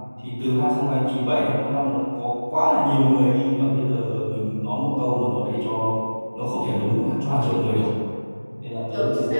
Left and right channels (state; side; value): inverted; both; correlation -1.00